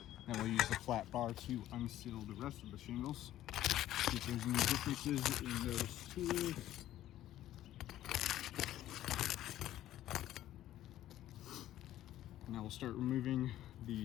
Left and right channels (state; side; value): quieter; right; 13.3 dB